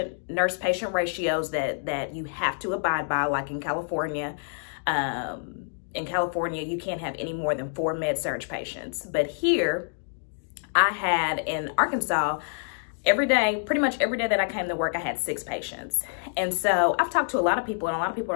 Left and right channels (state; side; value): silent; right; digital silence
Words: nurse-patient ratios that you have to abide by, like in California. In California, you can't have any more than 4 med-surg patients. But here, I had in Arkansas, every day, pretty much every day that I came to work, I had 6 patients. And so I've talked to a lot of people, and a lot of people